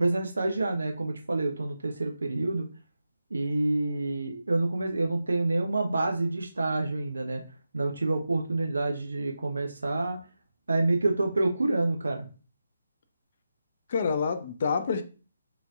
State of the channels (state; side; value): inverted; both; correlation -0.90